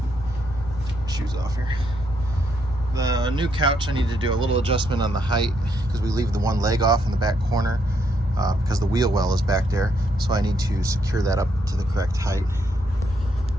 Shoes off here. The new couch, I need to do a little adjustment on the height because we leave the one leg off in the back corner because the wheel well is back there. So I need to secure that up to the correct height.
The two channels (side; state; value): both; normal; correlation 0.75